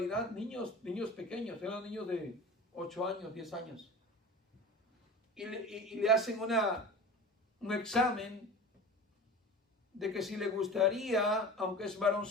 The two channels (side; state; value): both; normal; correlation 0.35